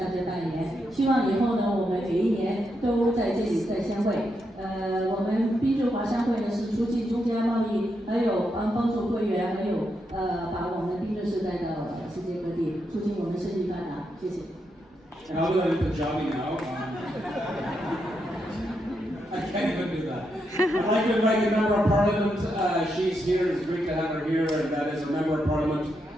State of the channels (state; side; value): normal; both; correlation 0.82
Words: 家拜年。希望以后呢，我们每一年都在这里再相会。我们宾顿华商会呢是促进中加贸易，还有帮助会员，还有把我们宾顿市带到世界各地，促进我们生意发达。谢谢。 And I'll do that in Punjabi now. I can't even do that. I'd like to invite the Member of Parliament. She's here. It's great to have her here. And that is a Member of Parliament